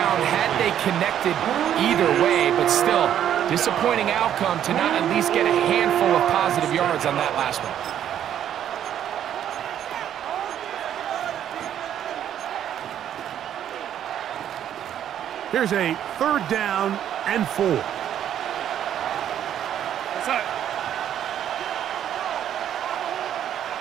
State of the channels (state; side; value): quieter; left; 10.3 dB